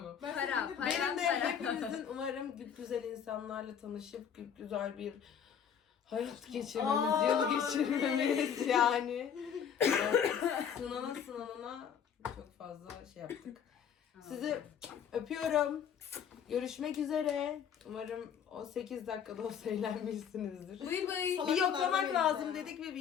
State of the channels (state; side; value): quieter; right; 8.0 dB